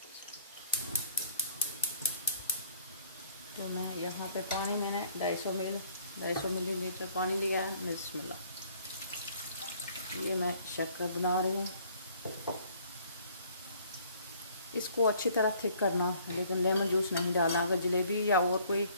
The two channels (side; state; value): both; inverted; correlation -0.59